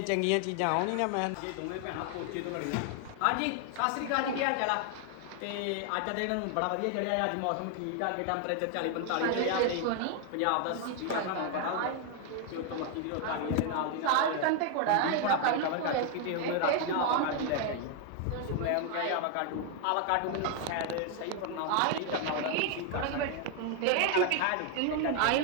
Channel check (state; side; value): different; both; correlation 0.00